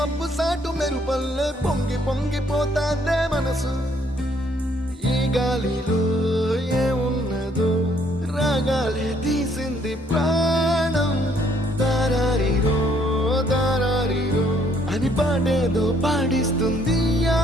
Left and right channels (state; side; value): normal; both; correlation 0.65